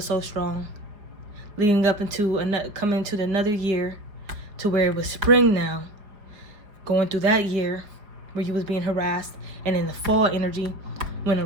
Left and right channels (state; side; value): late; left; 4.9 ms